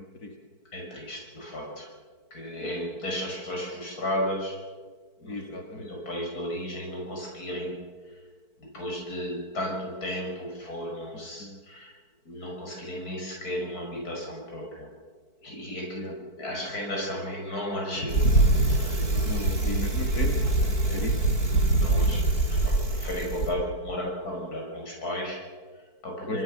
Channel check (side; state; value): right; late; 4.5 ms